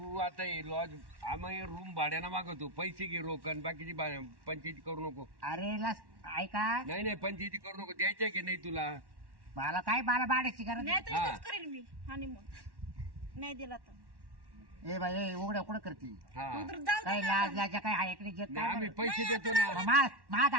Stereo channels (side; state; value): left; late; 1.1 ms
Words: आता लॉज आम्ही रूम भाड्यानं मागवतो पैसे घे रोकन बाकीची पंचायती करू नको अरे ऐका नाही नाही पंचायती करू नको द्यायचे की नाही तुला मला काय मला भाड्याची गरज नाही नाही. तर इथंच करेन मी हनीमून नाही दिला तर ए बाई ए, उघड्या कुठं करते हा उतर जाऊ काय दे लाज ना. लाजा काय ऐकली जे नाही, आम्ही काय पैसे नाही, देतो आता ना मा